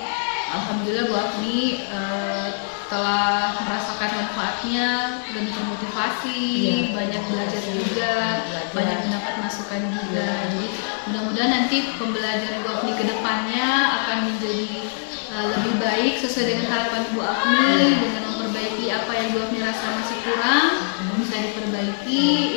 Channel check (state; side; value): silent; right; 58 dB below the other